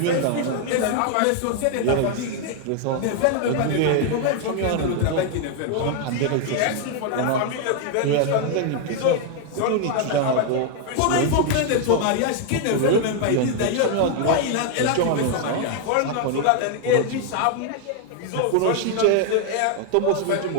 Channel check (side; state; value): both; different; correlation 0.00